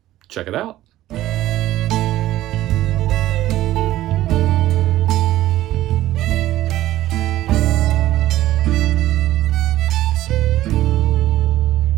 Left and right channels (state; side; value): quieter; left; 14.7 dB